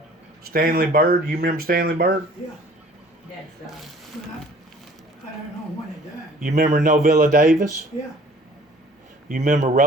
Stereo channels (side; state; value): both; normal; correlation 0.52